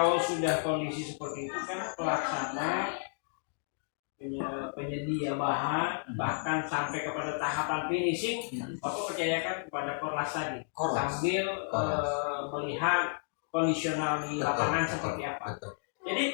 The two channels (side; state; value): right; silent; digital silence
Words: sudah kondisi seperti itu kan pelaksana, penyedia bahan, bahkan sampai kepada tahapan finishing, Bapak percayakan kepada Korlas tadi, sambil melihat kondisional di lapangan seperti apa.